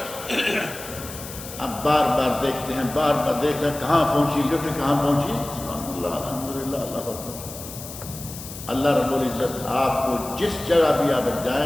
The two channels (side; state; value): left; noise; hiss, 12 dB below the sound